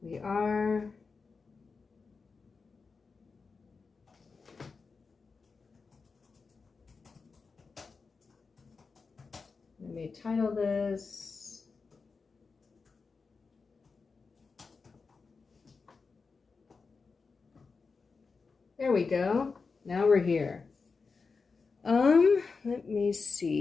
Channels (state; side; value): quieter; right; 4.7 dB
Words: We are. Let me title this. There we go. Now we're here. Let me